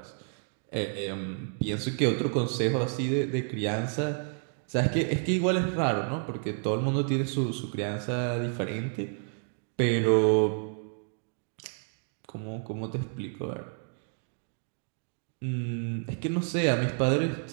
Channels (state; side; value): silent; left; 56 dB below the other